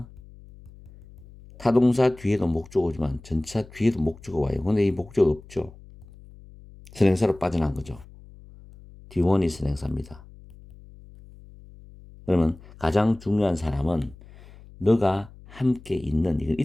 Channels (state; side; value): noise; left; hum, 21 dB below the sound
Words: 타동사 뒤에도 목적어지만 전치사 뒤에도 목적어 와요. 근데 이 목적어 없죠. 선행사로 빠져나간 거죠. D1이 선행사입니다. 그러면 가장 중요한 사람은 너가 함께 있는, 이건